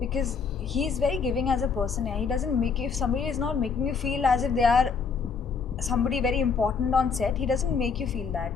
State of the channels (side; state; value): right; quieter; 5.6 dB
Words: he's very giving as a person. He doesn't make you, if somebody is not making you feel as if they are somebody very important on set, he doesn't make you feel that.